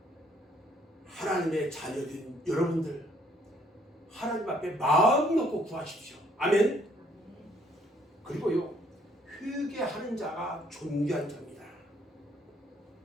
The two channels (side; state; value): both; normal; correlation 0.64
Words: 하나님의 자녀된 여러분들, 하나님 앞에 마음 놓고 구하십시오. 아멘. 그리고요, 회개하는 자가 존귀한 자입니다.